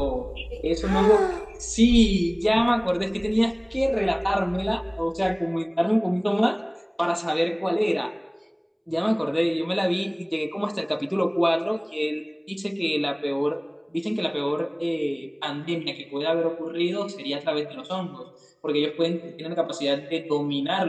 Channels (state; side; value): identical; both; correlation 1.00